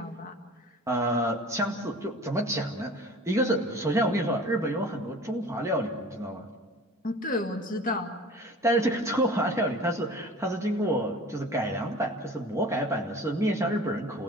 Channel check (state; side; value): normal; both; correlation 0.42